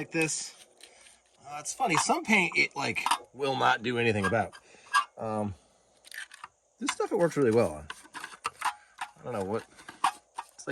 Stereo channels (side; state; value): both; identical; correlation 1.00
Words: this. It's funny, some paint it will not do anything about. This stuff it works really well on. I don't know what, it's